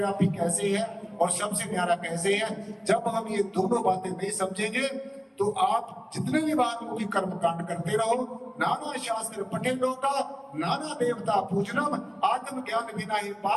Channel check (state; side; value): identical; both; correlation 1.00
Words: कैसे है और सबसे न्यारा कैसे है, जब हम ये दोनों बातें नहीं समझेंगे तो आप जितने भी बात कर्म कांड करते रहो, नाना शास्त्र पठे लोका, नाना देवता पूजनम, आत्म ज्ञान बिना ही